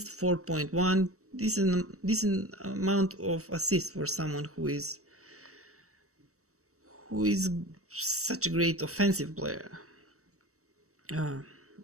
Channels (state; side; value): late; left; 0.65 ms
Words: 4.1. Decent amount of assists for someone who is such a great offensive player.